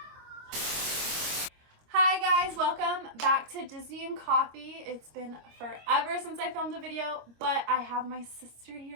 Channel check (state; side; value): late; left; 25 ms